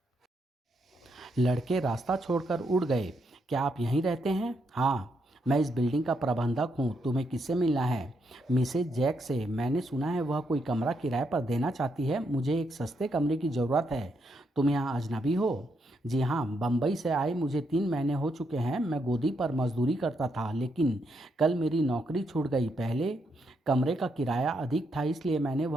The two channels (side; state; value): both; normal; correlation 0.78